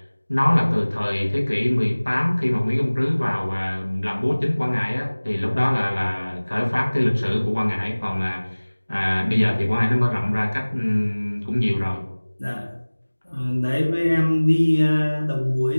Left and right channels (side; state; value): both; inverted; correlation -1.00